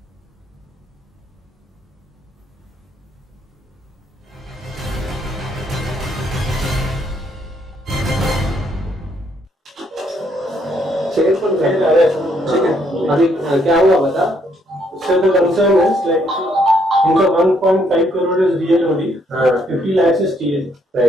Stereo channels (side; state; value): both; normal; correlation 0.71